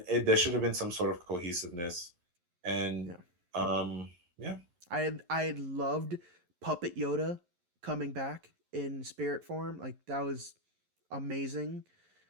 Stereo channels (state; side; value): late; left; 11 ms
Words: there should have been some sort of cohesiveness, and Yeah. yeah, I had loved Puppet Yoda coming back in spirit form. Like that was amazing.